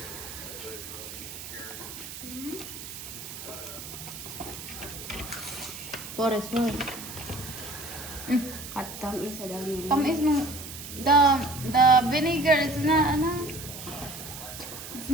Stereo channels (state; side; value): noise; right; hiss, 11 dB below the sound